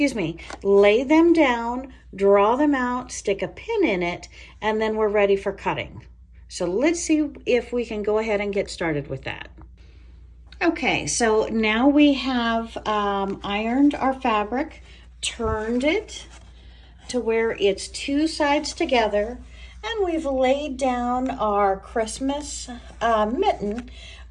me, lay them down, draw them out, stick a pin in it, and then we're ready for cutting. So let's see if we can go ahead and get started with that. Okay, so now we have ironed our fabric, turned it to where it's two sides together, and we've laid down our Christmas mitten.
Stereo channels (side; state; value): both; identical; correlation 1.00